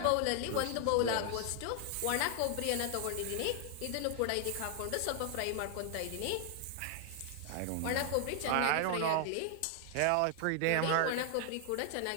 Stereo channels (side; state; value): both; different; correlation 0.00